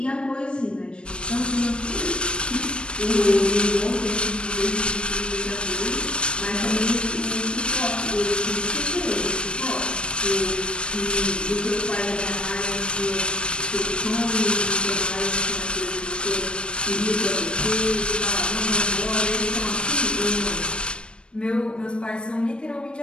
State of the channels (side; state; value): right; late; 0.055 ms